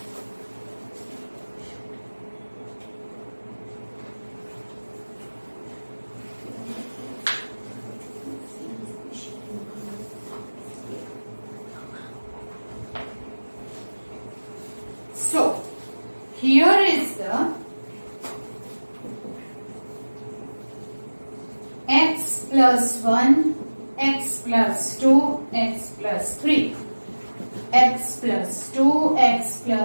so here is the x plus 1, x plus 2, x plus 3, x plus 2, x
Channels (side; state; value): both; inverted; correlation -1.00